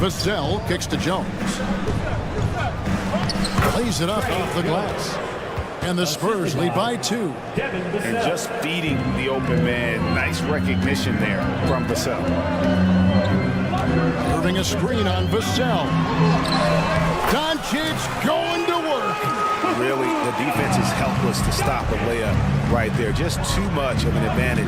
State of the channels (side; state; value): both; identical; correlation 1.00